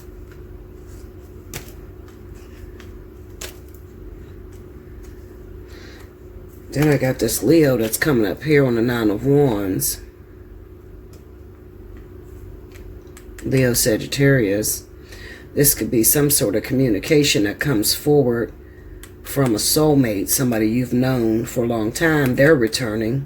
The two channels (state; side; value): identical; both; correlation 1.00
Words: Then I got this Leo that's coming up here on the Nine of Wands. Leo Sagittarius. This could be some sort of communication that comes forward from a soulmate, somebody you've known for a long time. They're